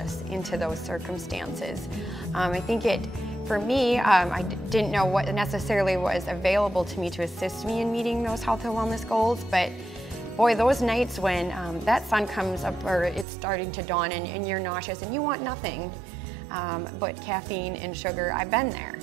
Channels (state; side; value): drops out; left; at 13.2 s